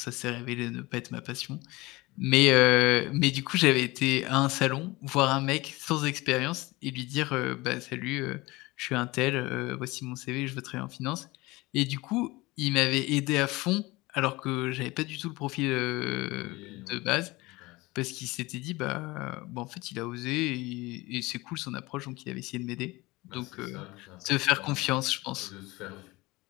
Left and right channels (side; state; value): right; quieter; 21.6 dB